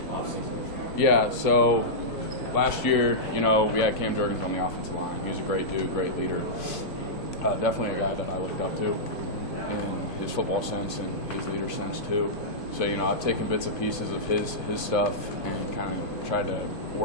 offseason? Yeah, so last year, we had Cam Jurgens on the offensive line. He was a great dude, great leader. Definitely a guy that I looked up to in his football sense and his leader sense too. So, I've taken bits and pieces of his stuff and kind of tried to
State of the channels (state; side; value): late; right; 2.7 ms